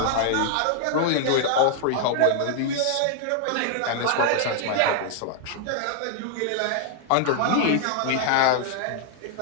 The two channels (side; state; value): both; different; correlation 0.00